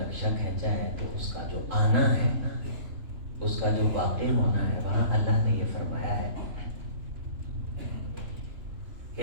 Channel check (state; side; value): late; left; 3.3 ms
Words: کھینچا ہے تو اس کا جو آنا ہے، اس کا جو واقع ہونا ہے، وہاں اللہ نے یہ فرمایا ہے